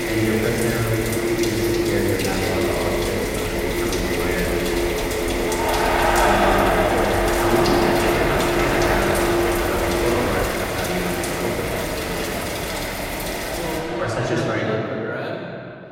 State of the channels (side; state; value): both; identical; correlation 1.00